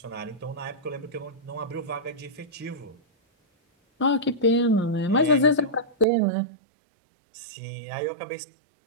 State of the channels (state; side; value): drops out; left; at 6.1 s